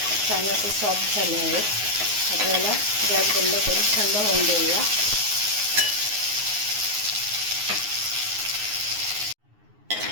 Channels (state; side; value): late; left; 9.6 ms